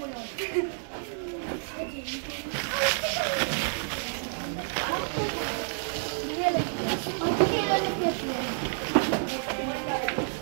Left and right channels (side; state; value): left; silent; digital silence